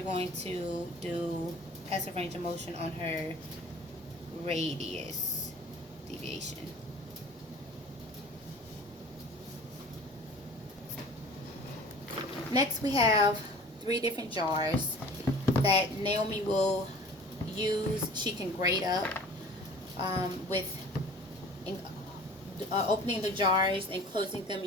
going to do passive range of motion on her radius deviation. Next we have 3 different jars that Naomi will use. She can grade up with opening the jars and closing them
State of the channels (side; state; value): both; normal; correlation 0.45